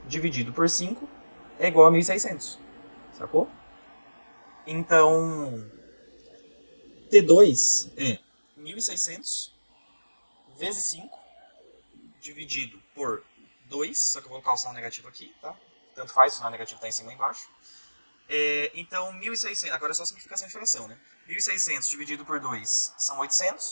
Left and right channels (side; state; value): both; inverted; correlation -1.00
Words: dividido por 5, é igual a 1.600. Sacou? Então, T2 é 1.600 vezes 5, dividido por 2, só que eu vou colocar o sinal negativo aqui, tá? Tanto faz, o sinal negativo está em cima e embaixo. Então, 1.600, agora é só simplificação de fração, né? 1.600 dividido por 2 são